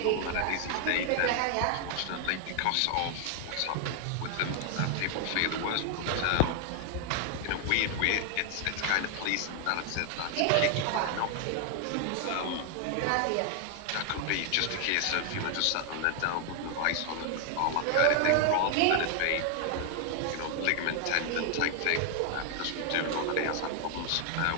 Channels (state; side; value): different; both; correlation 0.00